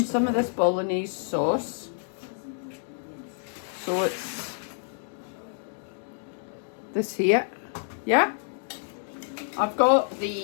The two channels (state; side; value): silent; right; digital silence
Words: of this bolognese sauce. So it's this here. Yeah. I've got